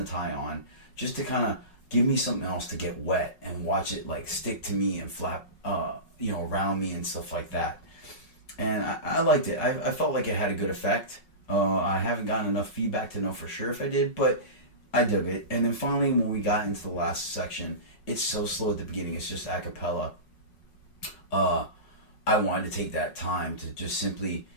tie on, just to kind of give me something else to get wet and watch it like stick to me and flap around me and stuff like that. And I liked it. I felt like it had a good effect. I haven't gotten enough feedback to know for sure if I did, but I dug it. And then finally, when we got into the last section, it's so slow at the beginning. It's just a cappella. I wanted to take that time to just simply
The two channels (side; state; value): right; late; 5.4 ms